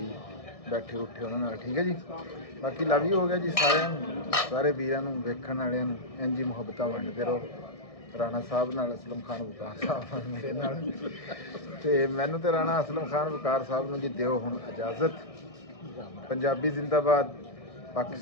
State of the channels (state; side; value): late; right; 1.6 ms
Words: ਬੈਠੇ ਉੱਠੇ ਉਹਨਾਂ ਨਾਲ ਠੀਕ ਹੈ ਜੀ ਬਾਕੀ ਲਵ ਯੂ ਹੋ ਗਿਆ ਜੀ ਸਾਰਿਆਂ ਨੂੰ ਸਾਰੇ ਵੀਰਾਂ ਨੂੰ ਵੇਖਣ ਵਾਲਿਆਂ ਨੂੰ ਇੰਝ ਹੀ ਮੁਹੱਬਤਾਂ ਵੰਡਦੇ ਰਹੋ ਰਾਣਾ ਸਾਹਿਬ ਨਾਲ ਅਸਲਮ ਖਾਨ ਵਕਾਰ ਸਾਹਿਬ ਮੇਰੇ ਨਾਲ ਤੇ ਮੈਨੂੰ ਤੇ ਰਾਣਾ ਅਸਲਮ ਖਾਨ ਵਕਾਰ ਸਾਹਿਬ ਨੂੰ ਜੀ ਦਿਓ ਹੁਣ ਇਜਾਜ਼ਤ ਪੰਜਾਬੀ ਜ਼ਿੰਦਾਬਾਦ